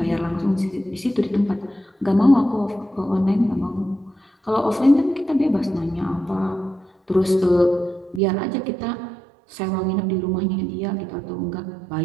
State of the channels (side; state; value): left; drops out; at 8.2 s